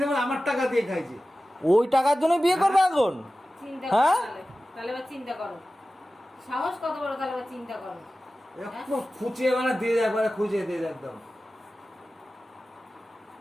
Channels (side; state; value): both; normal; correlation 0.95